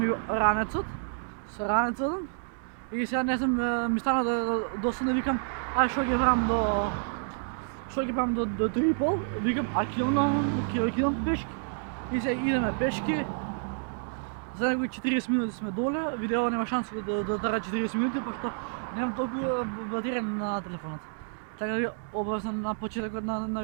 ранецот, со ранецот и сега не знам, ми стана досадно, викам, ај што ќе правам до 3:30, викам, ќе идам пешки. И сега идеме пешки. За некои 40 минути сме доле, видео нема шанса да трае 40 минути, пошто немам толку батерија на телефонот. Така да ви обавам на почетокот на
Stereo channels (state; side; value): silent; left; digital silence